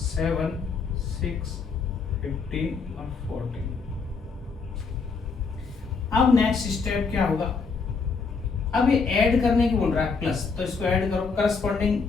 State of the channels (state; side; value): quieter; right; 4.8 dB